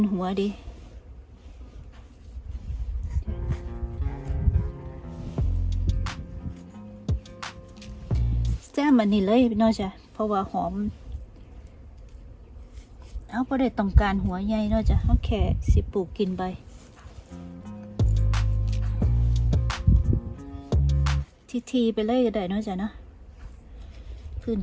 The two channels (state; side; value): identical; both; correlation 1.00